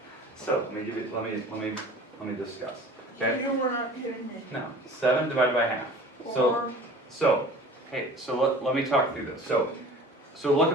So let me give you, let me discuss. Okay. You were not kidding me. No, 7 divided by half. So, hey, so let me talk through this. So look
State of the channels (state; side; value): normal; both; correlation 0.43